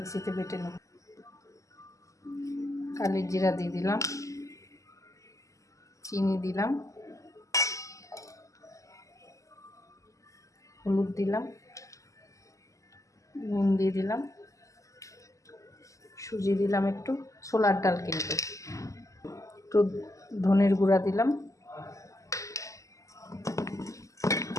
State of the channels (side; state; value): right; late; 0.16 ms